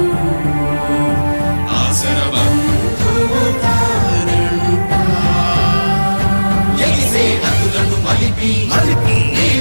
ఆసరబంధువు తానంట, ఎగిసే నదులను మలిపి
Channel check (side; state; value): both; inverted; correlation -1.00